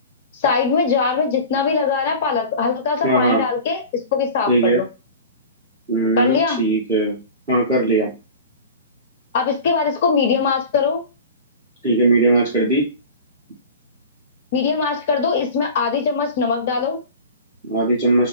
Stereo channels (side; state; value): both; inverted; correlation -0.36